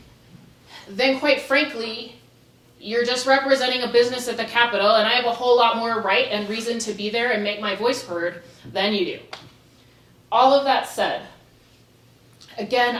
then quite frankly, you're just representing a business at the Capitol, and I have a whole lot more right and reason to be there and make my voice heard than you do. All of that said, again,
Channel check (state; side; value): identical; both; correlation 1.00